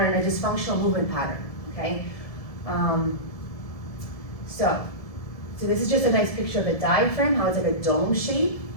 a dysfunctional movement pattern, okay? So this is just a nice picture of the diaphragm, how it's like a dome shape,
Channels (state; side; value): late; right; 1.7 ms